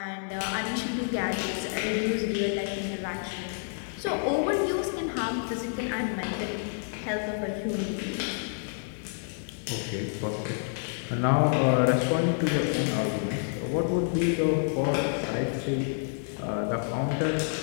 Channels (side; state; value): right; silent; 59 dB below the other